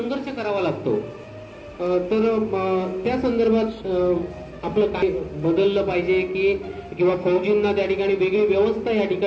करावा लागतो. तर त्या संदर्भात आपलं काय बदललं पाहिजे की किंवा फौजींना त्या ठिकाणी वेगळी व्यवस्था या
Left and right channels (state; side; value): identical; both; correlation 1.00